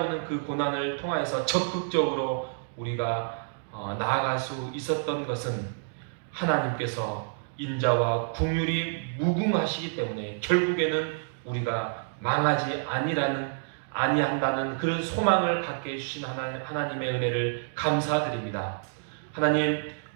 그 고난을 통하여서 적극적으로 우리가 나아갈 수 있었던 것은 하나님께서 인자와 긍휼이 무궁하시기 때문에 결국에는 우리가 망하지 아니한다는 그런 소망을 갖게 해주신 하나님의 은혜를 감사드립니다. 하나님,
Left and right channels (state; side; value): silent; left; digital silence